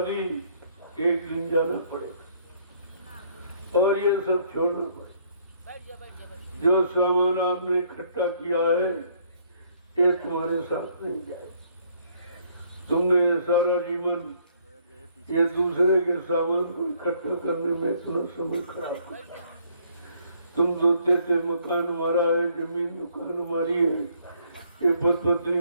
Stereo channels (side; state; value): both; inverted; correlation -0.65